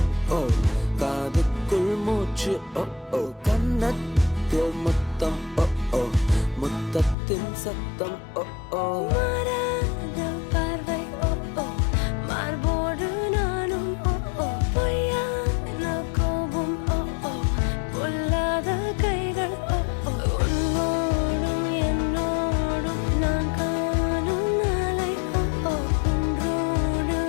ஓ காதுக்குள் மூச்சு ஓ கன்னத்தில் முத்தம் ஓ முத்தத்தின் சத்தம் ஓ மாறாத பார்வை மார்போடு நானும் பொய்யான கோபம் பொல்லாத கைகள் உன்னோடும் என்னோடும் நான் காணும் நாளை ஒன்றோடு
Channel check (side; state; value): right; drops out; at 7.2 s